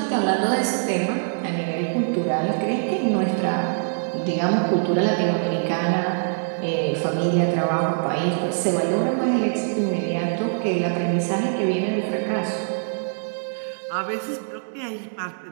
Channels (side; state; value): left; silent; digital silence